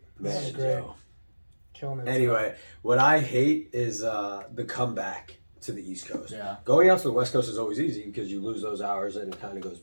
This is Man, great. Joe. Killing it. Anyway, what I hate is the comeback to the East Coast. Yeah. Going out to the West Coast is always easy because you lose those hours and it kind of goes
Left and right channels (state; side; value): inverted; both; correlation -1.00